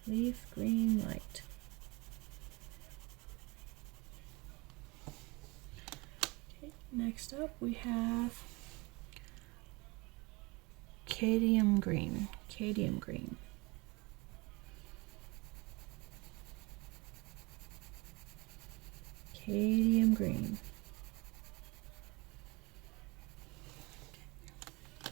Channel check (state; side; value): quieter; left; 25.4 dB